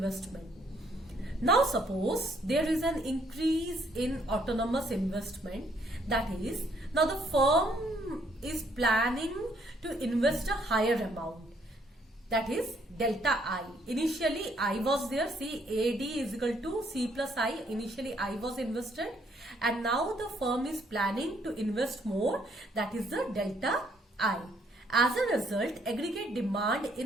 Now suppose there is an increase in autonomous investment. That is, now the firm is planning to invest a higher amount. That is delta I. Initially I was there. See, AD is equal to C plus I. Initially I was invested, and now the firm is planning to invest more. That is the delta I. As a result, aggregate demand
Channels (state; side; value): normal; both; correlation 0.68